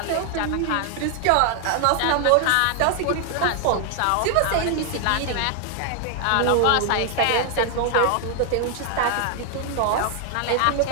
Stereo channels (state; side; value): different; both; correlation 0.00